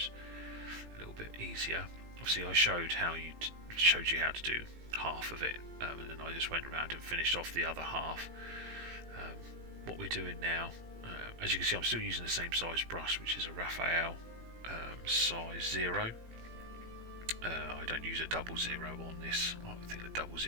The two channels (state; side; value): late; left; 18 ms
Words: a little bit easier. Obviously I showed you how to do half of it, and then I just went around and finished off the other half. What we're doing now, as you can see, I'm still using the same size brush, which is a Raphael size 0. I don't use a 00 on this. I think the